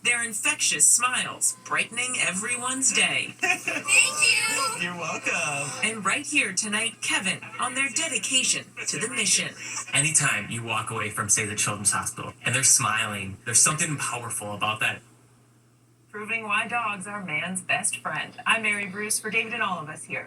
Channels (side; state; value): both; identical; correlation 1.00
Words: Their infectious smiles, brightening everyone's day. Thank you. You're welcome. And right here tonight, Kevin, on their dedication to the mission. Anytime you walk away from, say, the Children's Hospital, and they're smiling, there's something powerful about that. Proving why dogs are man's best friend. I'm Mary Bruce for David and all of us here.